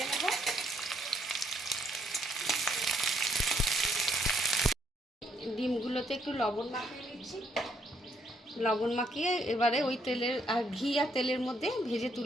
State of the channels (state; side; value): normal; both; correlation 0.71